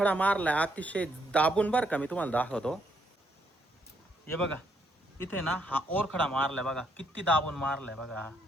मारला अतिशय दाबून बरं का. मी तुम्हाला दाखवतो. हे बघा इथे ना हा ओरखडा मारलाय बघा, किती दाबून मारलाय बघा.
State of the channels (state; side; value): normal; both; correlation 0.73